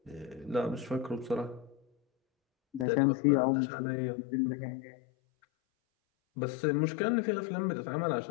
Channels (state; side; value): drops out; right; at 2.9 s